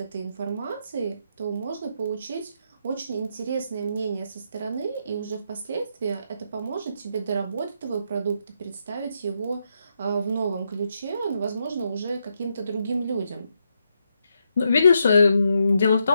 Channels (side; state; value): both; inverted; correlation -0.80